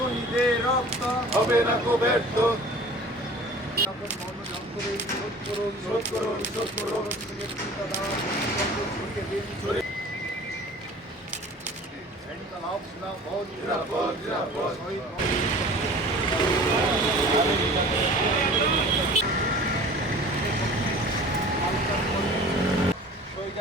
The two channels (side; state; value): both; normal; correlation 0.44